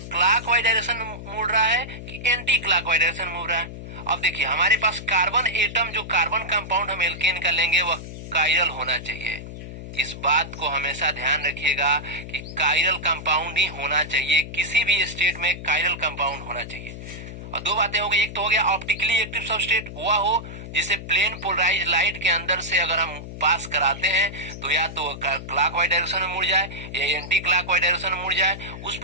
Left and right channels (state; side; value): noise; left; hum, 11 dB below the sound